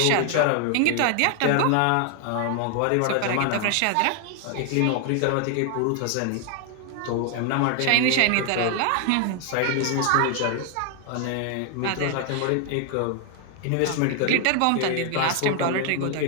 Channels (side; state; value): both; different; correlation 0.00